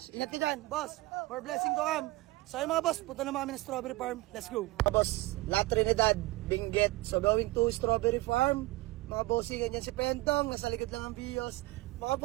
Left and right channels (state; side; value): quieter; left; 20.2 dB